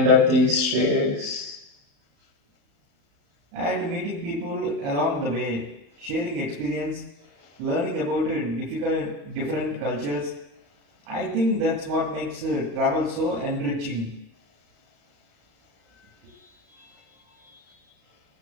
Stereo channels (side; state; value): left; late; 35 ms